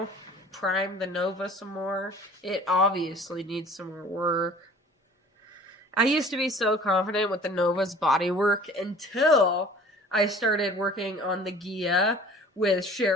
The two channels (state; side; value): normal; both; correlation 0.47